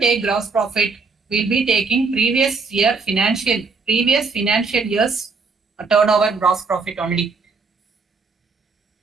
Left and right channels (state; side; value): quieter; left; 4.5 dB